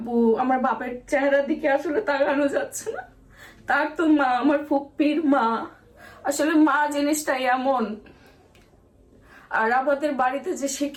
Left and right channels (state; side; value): identical; both; correlation 1.00